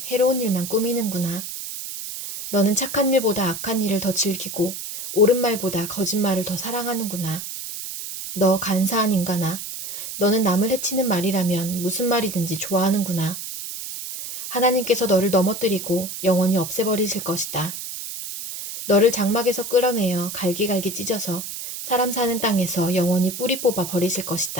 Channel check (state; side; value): noise; right; hiss, 8 dB below the sound